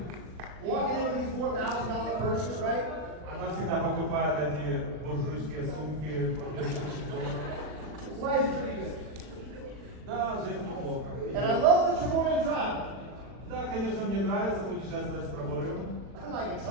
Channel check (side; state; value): left; late; 40 ms